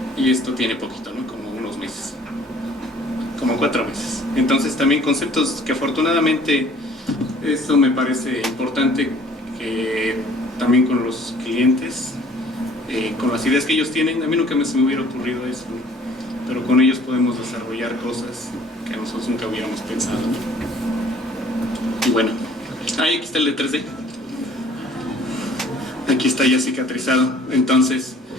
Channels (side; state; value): both; normal; correlation 0.55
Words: y esto tiene poquito, ¿no? Como unos meses, como 4 meses. Entonces también conceptos que afortunadamente, eso me parece importante, que también con los clientes, con las ideas que ellos tienen, a mí nunca se me hubiera ocurrido eso, ¿no? Pero con ellos podemos desarrollar cosas que nosotros nunca hubiéramos pensado, ¿no? Y bueno, ahí aquí está el de 3D, aquí está ya cicatrizado. Entonces